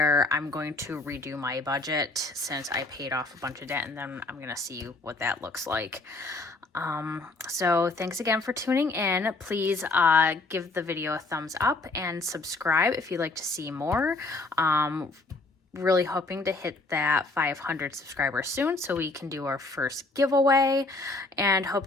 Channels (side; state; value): right; quieter; 3.3 dB